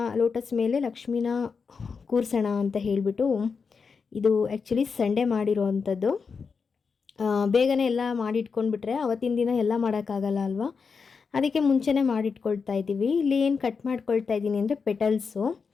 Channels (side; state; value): right; quieter; 5.4 dB